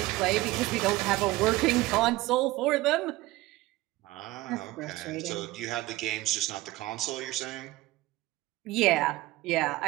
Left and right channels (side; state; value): left; quieter; 18.6 dB